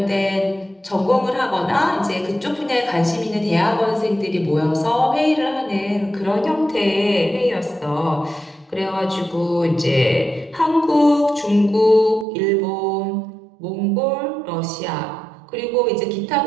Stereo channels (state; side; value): drops out; left; at 12.2 s